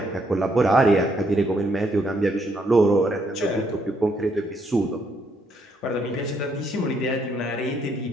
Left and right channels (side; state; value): both; normal; correlation 0.72